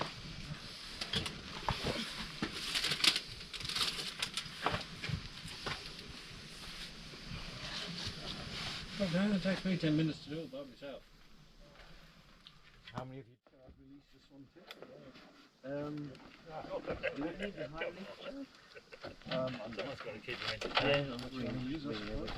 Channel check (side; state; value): both; identical; correlation 1.00